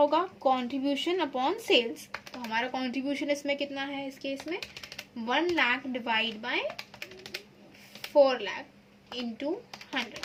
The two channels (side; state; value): both; identical; correlation 1.00